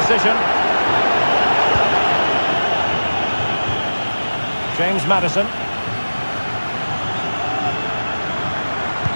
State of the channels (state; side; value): inverted; both; correlation -1.00